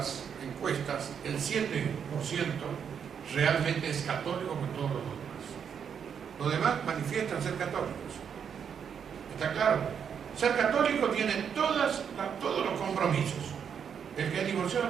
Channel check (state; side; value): quieter; left; 7.5 dB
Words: encuestas, el 7% realmente es católico con todos los demás. Los demás manifiestan ser católicos. ¿Está claro? Ser católico tiene todos los compromisos. El que es